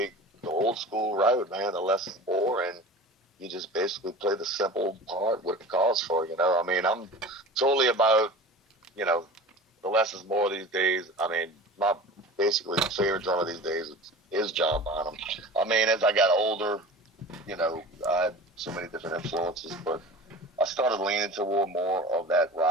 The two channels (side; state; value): both; normal; correlation 0.37